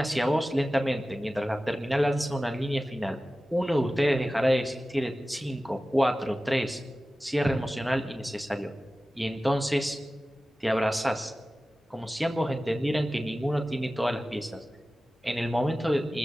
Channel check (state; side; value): normal; both; correlation 0.96